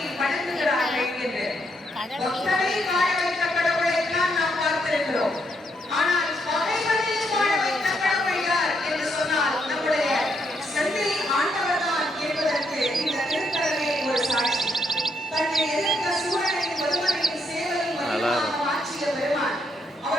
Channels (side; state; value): both; normal; correlation 0.76